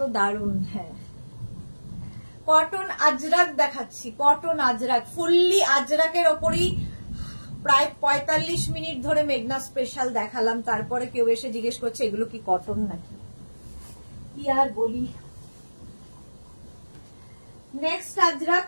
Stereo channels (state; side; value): inverted; both; correlation -1.00